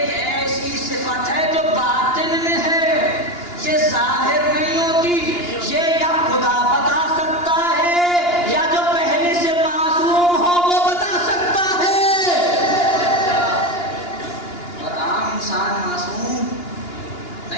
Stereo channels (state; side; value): late; right; 2.9 ms